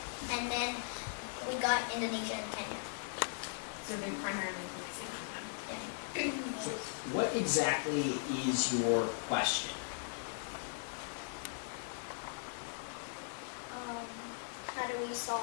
and then we got Indonesia and Kenya. So, they primarily focusing on them. So what exactly is your question? How do we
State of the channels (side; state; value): right; silent; digital silence